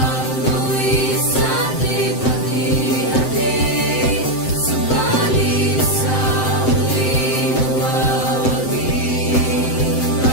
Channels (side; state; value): right; late; 7.8 ms